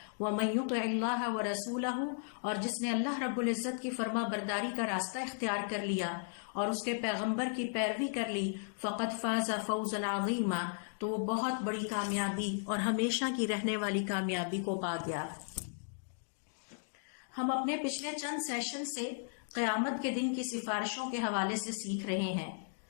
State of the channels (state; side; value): silent; right; digital silence